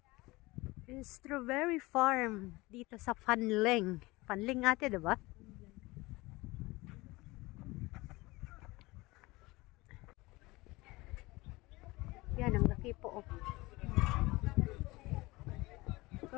Strawberry farm dito sa Fanling. Fanling ate, diba? Yan, ang laki po. Oh.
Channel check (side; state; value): right; quieter; 21.7 dB